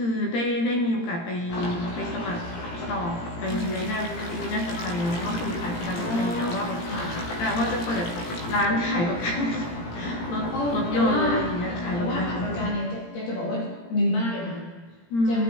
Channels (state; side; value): late; right; 17 ms